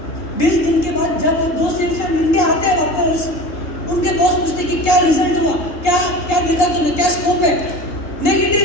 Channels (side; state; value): right; late; 3.7 ms